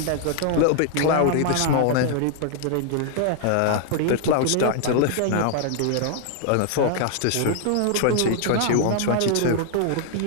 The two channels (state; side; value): different; both; correlation 0.00